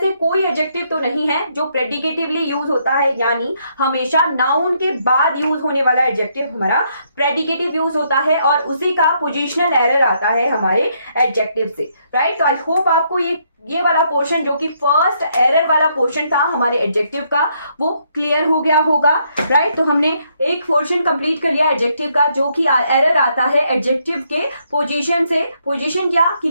कोई एडजेक्टिव तो नहीं है जो प्रेडिकेटिवली यूज होता है, यानी हमेशा नाउन के बाद यूज होने वाला एडजेक्टिव हमारा प्रेडिकेटिव यूज होता है और उसी का पोजीशनल एरर आता है हमारे एडजेक्टिव से, राइट। तो आई होप आपको ये वाला पोर्शन जो कि फर्स्ट एरर वाला पोर्शन था हमारे एडजेक्टिव का वो क्लियर हो गया होगा, राइट। तो हमने एक पोर्शन कंप्लीट कर लिया एडजेक्टिव का, जो कि एरर आता है एडजेक्टिव के पोजीशन से। पोजीशन क्या कि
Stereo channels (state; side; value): inverted; both; correlation -0.73